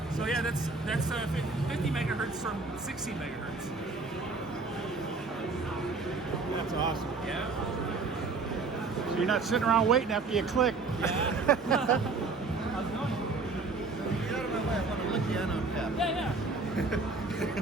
So yeah, that's 50 megahertz from 16 megahertz. That's awesome. Yeah. So you're not sitting around waiting after you click. Yeah. How's it going? Get out of my way. I want to lick the end on cap. Yeah.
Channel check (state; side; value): quieter; left; 4.0 dB